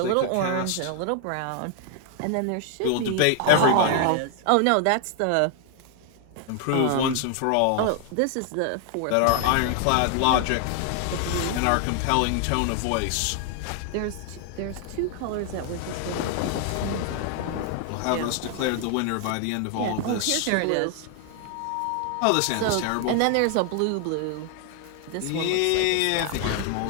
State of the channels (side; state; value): both; different; correlation 0.00